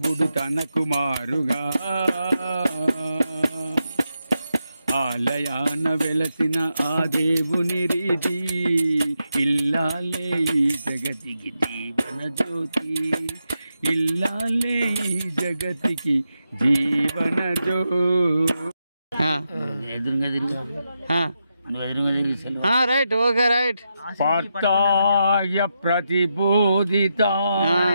తన కుమారుగా. ఆలయాన వెలసిన ఆ దేవుని రీతి ఇల్లాలే ఈ జగతికి జీవన జ్యోతి, ఇల్లాలే ఈ జగతికి జీవన జ్యోతి. Right, okay right. పార్థాయ ప్రతిబోధిత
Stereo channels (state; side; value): inverted; both; correlation -0.86